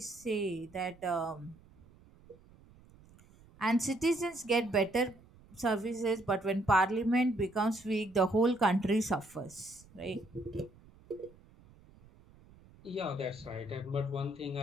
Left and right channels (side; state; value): right; noise; rumble, 25 dB below the sound